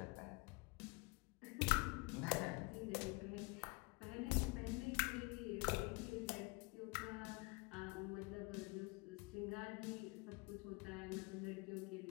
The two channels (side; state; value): right; quieter; 27.6 dB